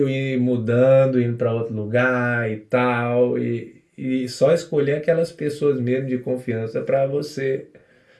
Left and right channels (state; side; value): identical; both; correlation 1.00